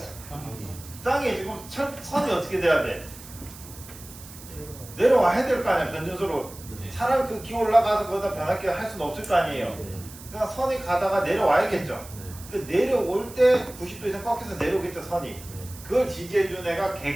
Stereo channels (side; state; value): right; noise; hiss, 17 dB below the sound